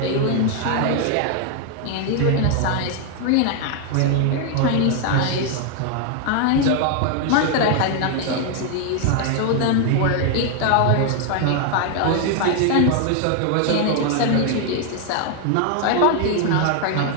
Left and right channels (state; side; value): different; both; correlation 0.00